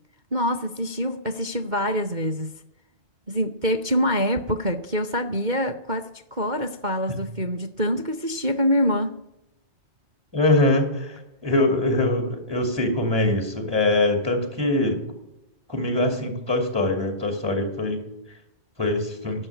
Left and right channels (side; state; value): left; late; 2.2 ms